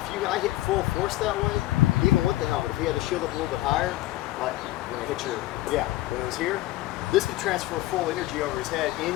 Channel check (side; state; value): right; quieter; 16.9 dB